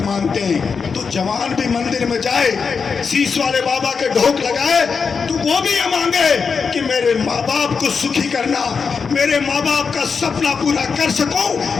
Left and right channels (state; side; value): quieter; right; 5.5 dB